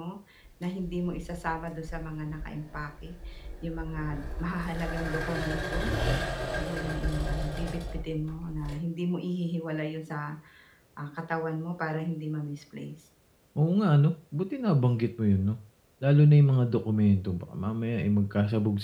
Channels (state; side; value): identical; both; correlation 1.00